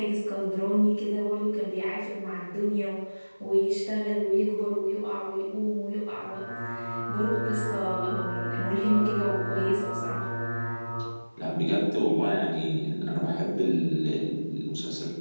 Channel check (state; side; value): inverted; both; correlation -1.00